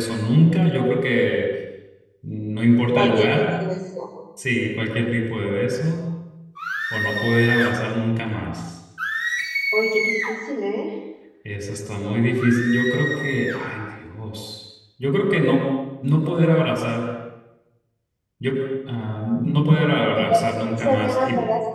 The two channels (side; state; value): both; identical; correlation 1.00